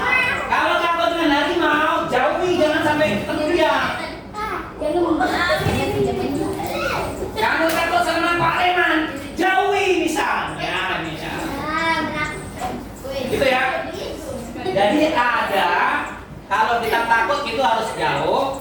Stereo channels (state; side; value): identical; both; correlation 1.00